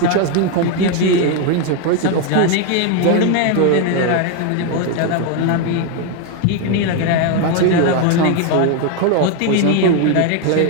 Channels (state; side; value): different; both; correlation 0.01